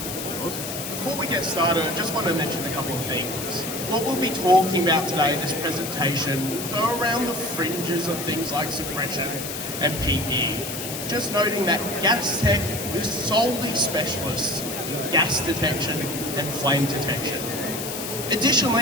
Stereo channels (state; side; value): noise; left; hiss, 6 dB below the sound